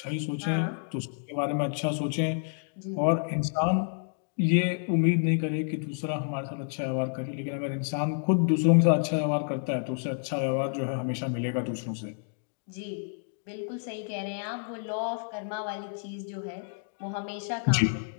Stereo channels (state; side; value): silent; right; digital silence